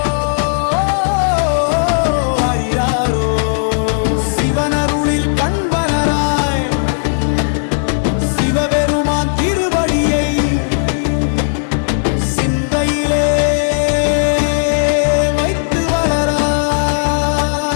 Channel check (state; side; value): silent; right; digital silence